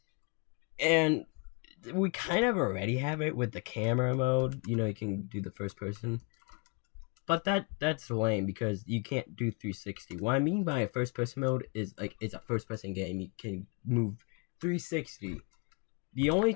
And we kind of already have it with the camera mode. You can do the first person. But that's lame because you can't do 360. What I mean by a first person mode is like it's a first person game. You can move 360. The only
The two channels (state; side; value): quieter; right; 33.1 dB